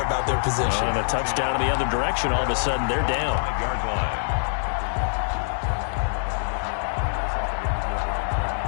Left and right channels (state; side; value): silent; right; digital silence